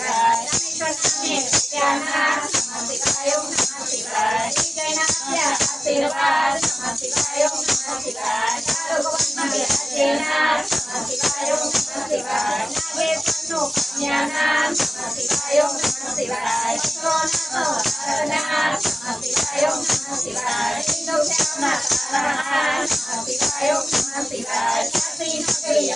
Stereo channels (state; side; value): normal; both; correlation 0.96